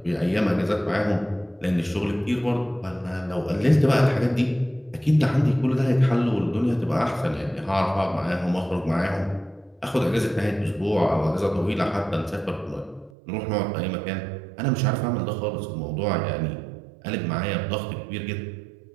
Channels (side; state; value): left; drops out; at 13.1 s